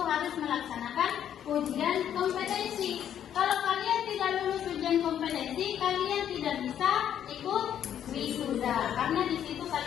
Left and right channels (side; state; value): right; quieter; 9.8 dB